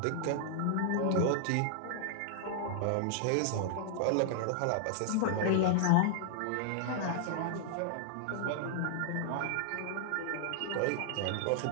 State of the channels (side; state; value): both; different; correlation -0.01